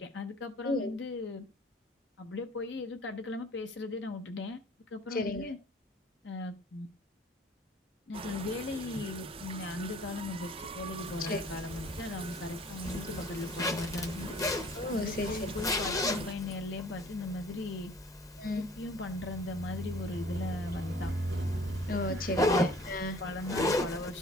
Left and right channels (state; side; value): normal; both; correlation 0.52